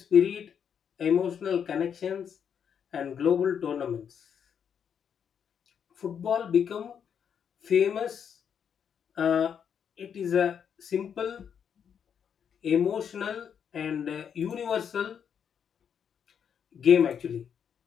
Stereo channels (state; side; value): quieter; right; 7.8 dB